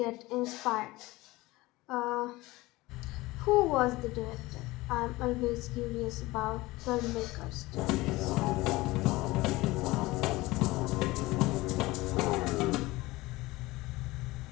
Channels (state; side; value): quieter; right; 20.2 dB